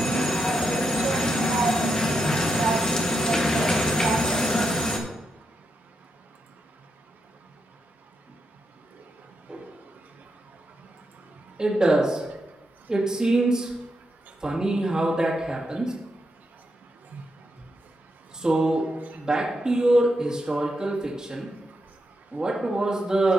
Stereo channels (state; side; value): normal; both; correlation 0.83